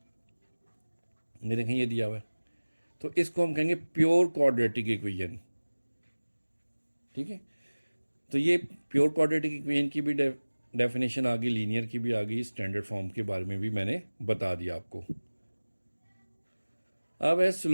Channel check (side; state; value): both; inverted; correlation -1.00